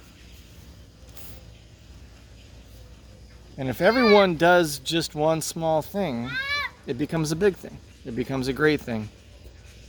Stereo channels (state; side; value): identical; both; correlation 1.00